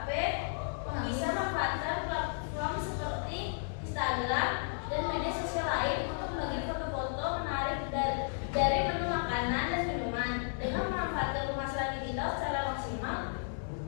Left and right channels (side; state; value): right; silent; digital silence